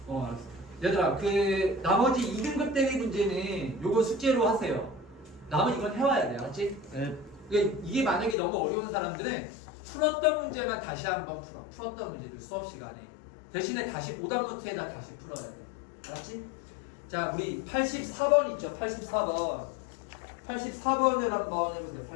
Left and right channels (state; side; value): drops out; right; at 8.3 s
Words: 알았어. 얘들아 그 나머지 2등급 대비 문제는 요거 숙제로 하세요. 남은 이건 해와야 돼. 알았지? 네. 이게 만약에 너무 어려운 사람들은 풀었던 문제만 다시 한번 풀어. 풀었던 문제들 수업 시간에 대신에 다시 오답 노트에다 다시 풀어야 돼. 알았지? 자 우리 84번 있죠. 84번 84번을 한번 해보세요.